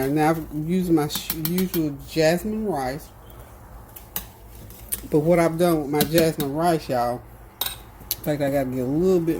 Now, I've used my usual jasmine rice. But what I've done with my jasmine rice, y'all, in fact, I got to get a little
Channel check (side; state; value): both; identical; correlation 1.00